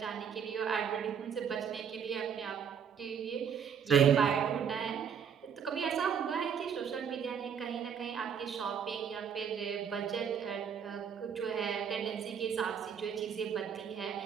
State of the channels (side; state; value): left; quieter; 7.5 dB